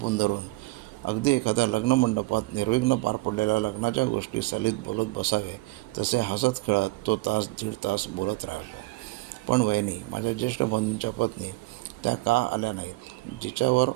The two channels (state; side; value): quieter; left; 21.6 dB